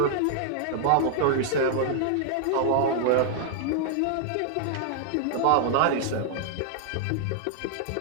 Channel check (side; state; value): both; different; correlation -0.01